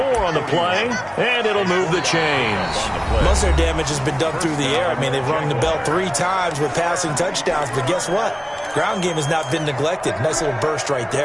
on the play, and it'll move the chains. Most of their damage has been done through the air. I mean, they've rung the bell 3 times with passing touchdowns, but guess what? Ground game has not been neglected. Nice little burst right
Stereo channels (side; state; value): both; identical; correlation 1.00